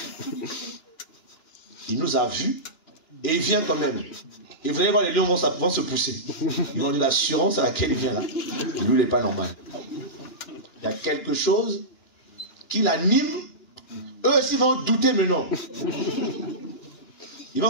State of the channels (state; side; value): late; right; 2.9 ms